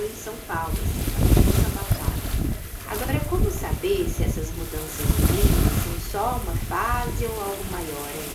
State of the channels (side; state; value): both; identical; correlation 1.00